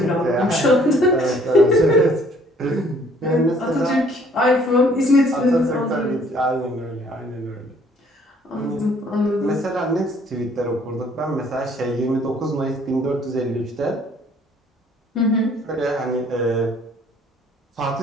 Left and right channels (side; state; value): both; normal; correlation 0.59